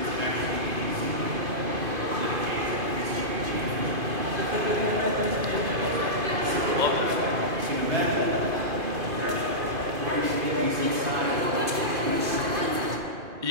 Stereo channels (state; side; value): late; left; 2.5 ms